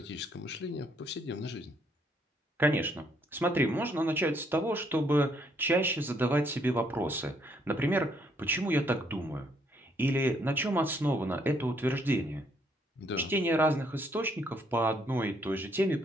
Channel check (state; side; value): normal; both; correlation 0.70